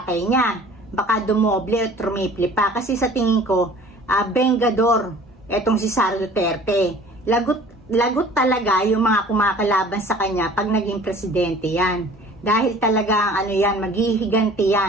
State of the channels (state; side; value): normal; both; correlation 0.47